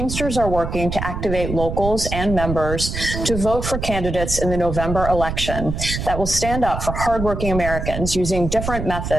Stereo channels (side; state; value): right; noise; rumble, 5 dB below the sound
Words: are working to activate locals and members to vote for candidates in the November election that will stand up for hardworking Americans using different